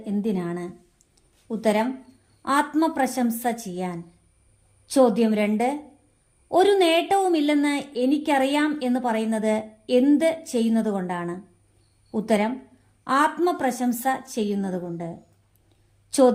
എന്തിനാണ്? ഉത്തരം: ആത്മപ്രശംസ ചെയ്യാൻ. ചോദ്യം 2. ഒരു നേട്ടവുമില്ലെന്ന് എനിക്കറിയാം എന്ന് പറയുന്നത് എന്ത് ചെയ്യുന്നതുകൊണ്ടാണ്? ഉത്തരം: ആത്മപ്രശംസ ചെയ്യുന്നതുകൊണ്ട്.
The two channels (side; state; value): both; identical; correlation 1.00